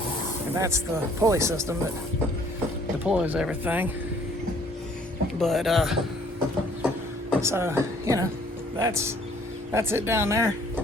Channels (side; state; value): both; normal; correlation 0.59